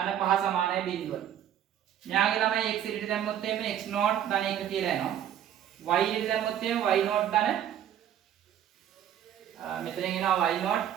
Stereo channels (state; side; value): quieter; left; 10.4 dB